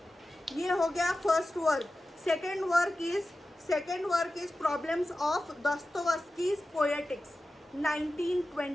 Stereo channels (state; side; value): normal; both; correlation 0.94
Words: ये हो गया first work. Second work is problems of Dostoevsky's poetics